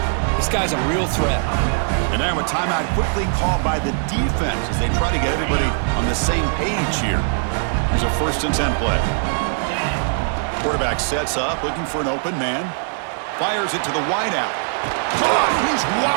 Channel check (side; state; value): left; silent; digital silence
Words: This guy's a real threat. And now a timeout quickly called by the defense as they try to get everybody on the same page here. Here's a 1st and 10 play. Quarterback sets up, looking for an open man. Fires it to the wideout. Caught! He's